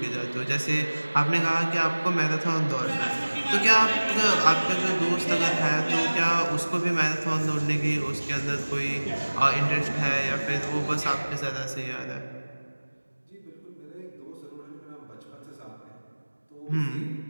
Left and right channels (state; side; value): inverted; both; correlation -1.00